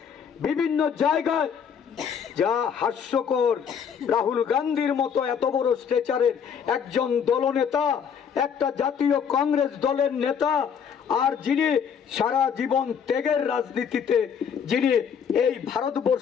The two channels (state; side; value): quieter; right; 7.3 dB